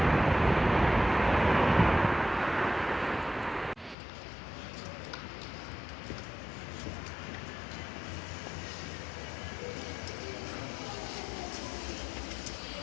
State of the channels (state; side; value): drops out; right; at 4.0 s